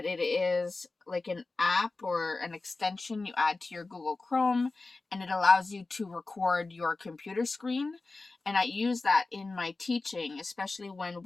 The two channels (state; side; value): quieter; right; 3.5 dB